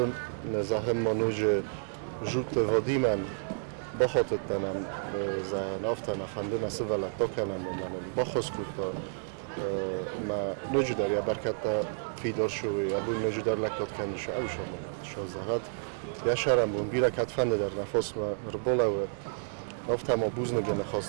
نزاهم منوج جوت وادی من بخاطت تنم زن آفتا نفنده نسی ولدتا کنم من بخواست کتا ما نوجو در یا برکتا فیدار شوی ابو نوجو در لکات کنش او شما شازهات یاشرم بون بیره کتفنده در نفس ما ربوله و افتا ما بوزنگه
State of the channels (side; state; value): left; silent; digital silence